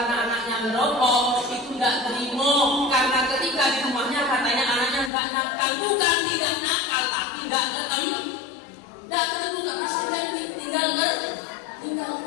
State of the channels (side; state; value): right; drops out; at 5.1 s